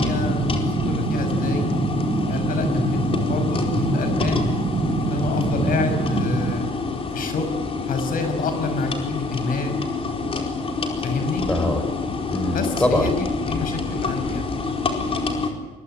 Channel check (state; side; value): normal; both; correlation 0.60